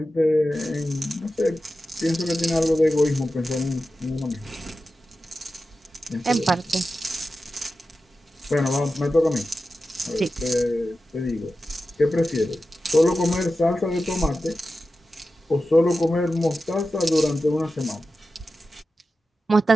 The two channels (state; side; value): normal; both; correlation 0.92